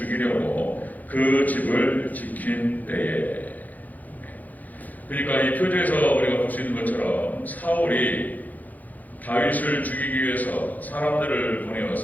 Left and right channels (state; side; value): late; right; 0.081 ms